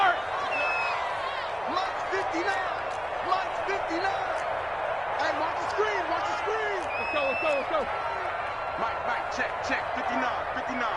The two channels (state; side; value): identical; both; correlation 1.00